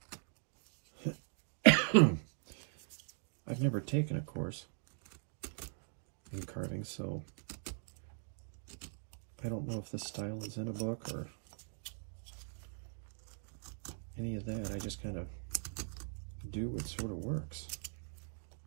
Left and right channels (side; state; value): left; silent; digital silence